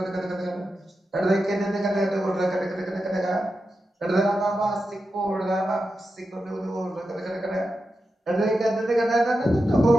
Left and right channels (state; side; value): normal; both; correlation 0.90